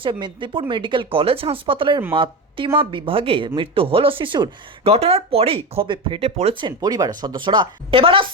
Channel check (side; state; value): both; normal; correlation 0.20